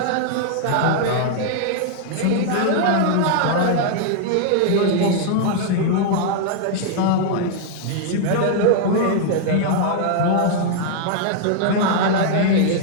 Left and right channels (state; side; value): different; both; correlation 0.00